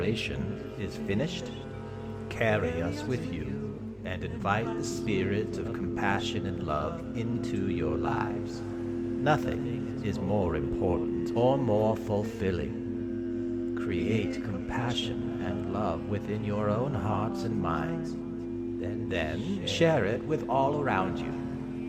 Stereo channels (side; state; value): both; identical; correlation 1.00